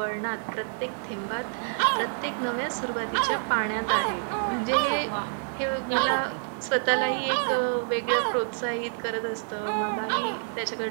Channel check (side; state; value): left; silent; 60 dB below the other